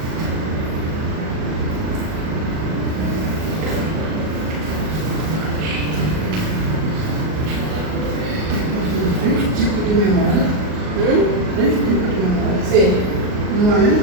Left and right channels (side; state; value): left; late; 38 ms